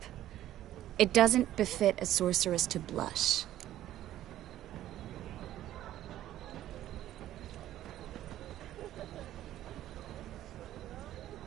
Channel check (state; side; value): quieter; left; 13.1 dB